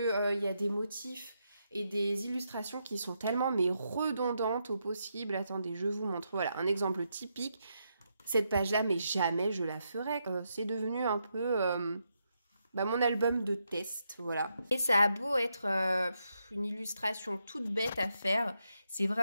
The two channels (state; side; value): inverted; both; correlation -0.82